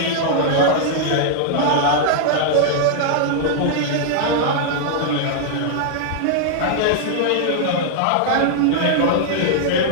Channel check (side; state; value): both; different; correlation -0.01